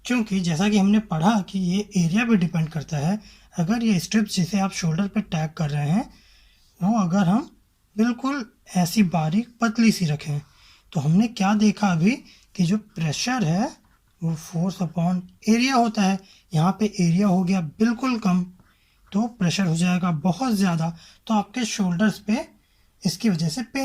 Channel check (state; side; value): identical; both; correlation 1.00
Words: क्योंकि जैसा कि हमने पढ़ा कि ये एरिया पे डिपेंड करता है। अगर ये स्ट्रिप्स जिसे आप शोल्डर पे टैग कर रहे हैं वो अगर हम बिल्कुल ऐसी बारीक पतली सी रखें तो हमने क्या देखा अभी कि जो प्रेशर है वो फोर्स अपॉन एरिया होता है। यहाँ पे एरिया हो गया बिल्कुल कम तो प्रेशर हो जाएगा बहुत ज़्यादा, तो आपके शोल्डर्स पे इसकी वजह से